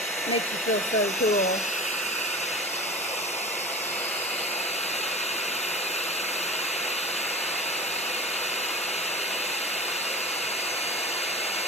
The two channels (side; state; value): both; normal; correlation 0.35